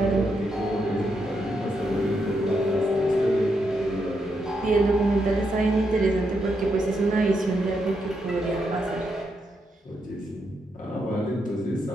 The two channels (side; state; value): both; normal; correlation 0.81